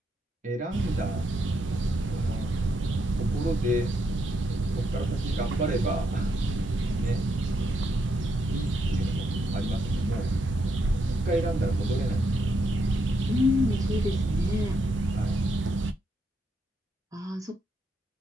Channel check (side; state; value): both; normal; correlation 0.78